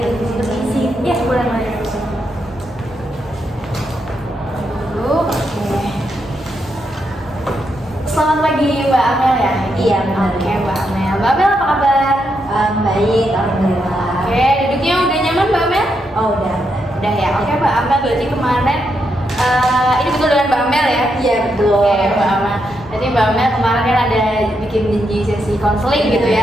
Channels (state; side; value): normal; both; correlation 0.81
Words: di sini isi. Ya, boleh Mbak. Dulu, oke. Selamat pagi Mbak Amel ya? Iya, benar. Oke Mbak Amel. Mbak Amel apa kabar? Baik, alhamdulillah. Oke, duduknya udah nyaman Mbak Amel? Oh, udah. Udah ya. Oke Mbak Amel, berarti kemarin ini betul dengan Mbak Amel ya? Iya, betul. Oke Mbak Amel. Jadi Mbak Amel kemarin kan ada bikin janji sesi konseling gitu